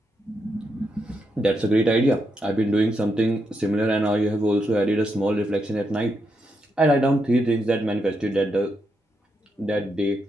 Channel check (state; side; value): normal; both; correlation 0.82